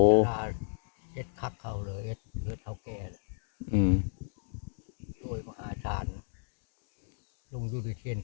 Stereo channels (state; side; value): silent; right; digital silence